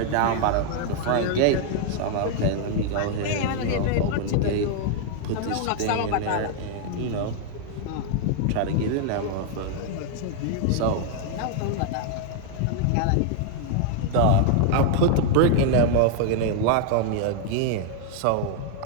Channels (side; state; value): both; different; correlation 0.00